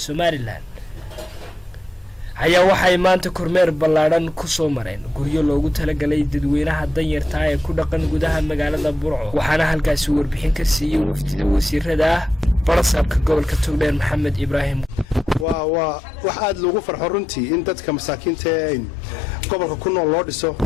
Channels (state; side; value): normal; both; correlation 0.87